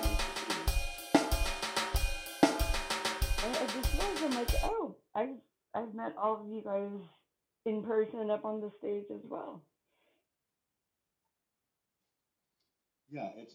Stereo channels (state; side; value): identical; both; correlation 1.00